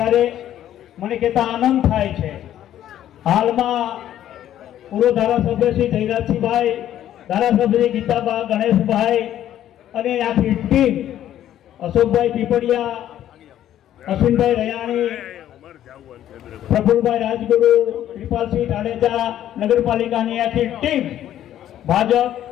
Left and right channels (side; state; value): right; quieter; 11.7 dB